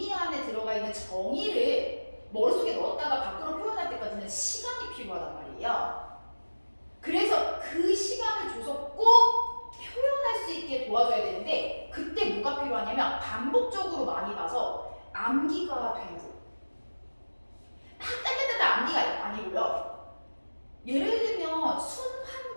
안에 들어가 있는 정의를 머릿속에 넣었다가 밖으로 표현할 때까지는 시간이 필요하단 말이에요. 그래서 그 시간을 줘서 꼭 표현할 수 있게 도와줘야 되는데, 그때 뭐가 필요하냐면 반복적으로 많이 봐서 암기가 돼야 돼요. 따따따따 암기가 아니고요. 예를 들면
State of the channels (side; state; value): both; inverted; correlation -1.00